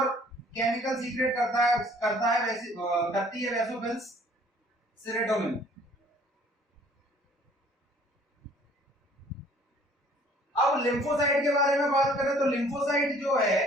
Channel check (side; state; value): both; normal; correlation 0.56